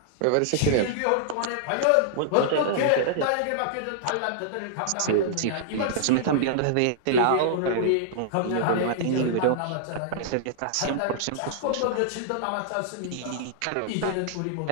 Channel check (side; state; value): both; different; correlation -0.01